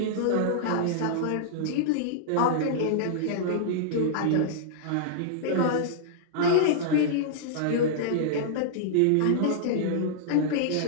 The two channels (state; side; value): different; both; correlation -0.02